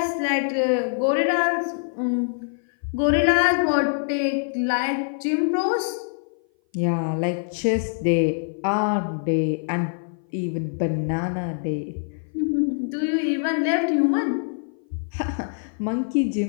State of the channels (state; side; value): silent; right; 57 dB below the other